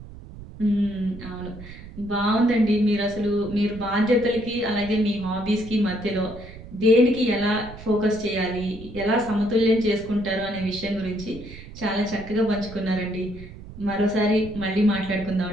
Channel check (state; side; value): noise; right; rumble, 15 dB below the sound